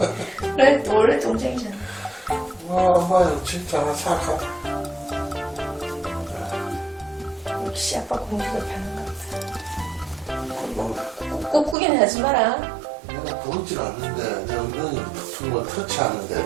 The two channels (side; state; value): left; drops out; at 11.8 s